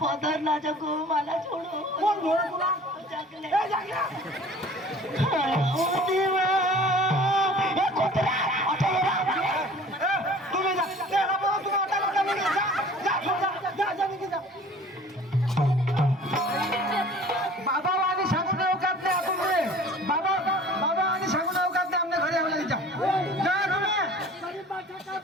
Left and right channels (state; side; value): normal; both; correlation 0.47